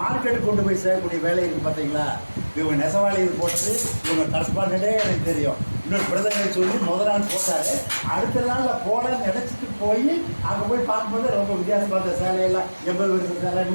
கொண்டு போய் சேரக்கூடிய வேலை இருக்குது பார்த்தீங்களா. இவங்க நெசவாளி இது போட்டது இவங்க கரஸ்பாண்டே எனக்கு தெரியும். இன்னொரு பிரதமரை சொல்லி முதல் நாள் போட்டார், அடுத்த நாளில் போடன்னு நினச்சிட்டு போய் அங்கே போய் பார்க்கும்போது ரொம்ப வித்தியாசம் பார்த்த சேலையெல்லாம் 80 வருஷம் சேலை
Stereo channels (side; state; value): both; inverted; correlation -1.00